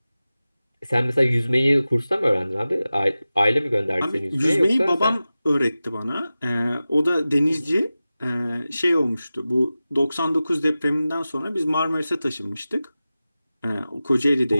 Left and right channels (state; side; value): inverted; both; correlation -0.95